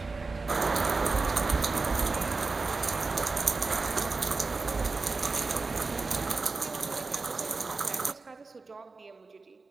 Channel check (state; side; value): quieter; left; 4.0 dB